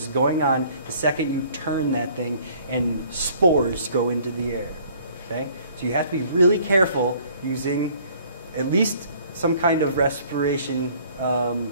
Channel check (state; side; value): inverted; both; correlation -0.57